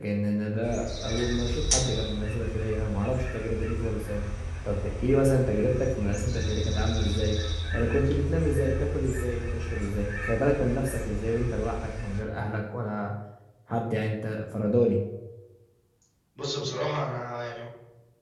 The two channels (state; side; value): identical; both; correlation 1.00